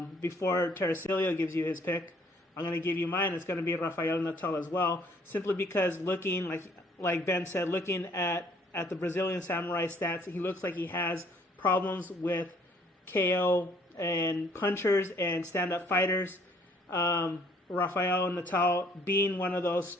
Before Tercilio gives you his pick, I'm going to give you mine. It's going to be Rafael Natal as well, simply because looking, like Ben said, looking at the Brazilian samurai stats, he looks like he has problems with KO and punchers and stand-up fighters. Rafael Natal being one of those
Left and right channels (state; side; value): normal; both; correlation 0.61